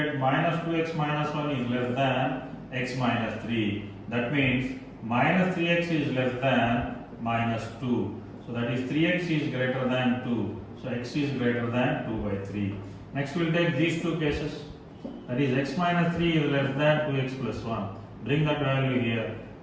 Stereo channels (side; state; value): both; identical; correlation 1.00